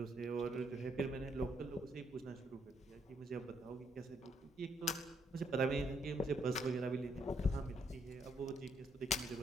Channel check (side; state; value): both; normal; correlation 0.72